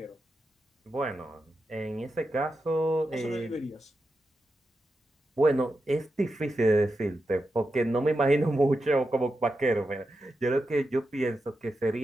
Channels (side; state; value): both; normal; correlation 0.89